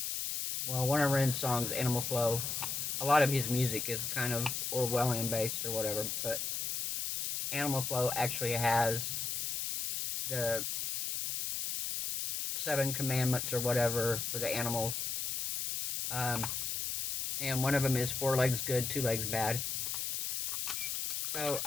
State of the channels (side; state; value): left; noise; hiss, 2 dB below the sound